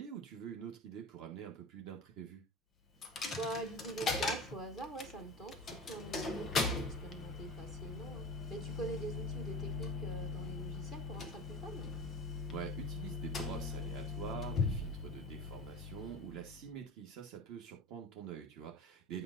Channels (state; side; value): normal; both; correlation 0.32